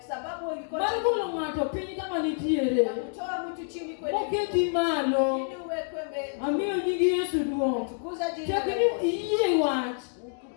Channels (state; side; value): silent; right; digital silence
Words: sababu iko mar golo ng'ato piny kama nitiere. Mtu chini kwenye moketi malo. Ili uwekwe mbele. Amiyo nyingi Yesu duong'. Tukuza jina la Yesu. Iyie wach.